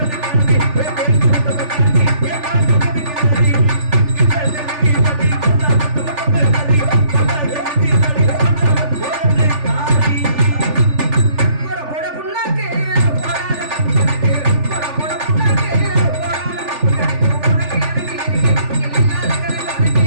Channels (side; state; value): left; late; 3.4 ms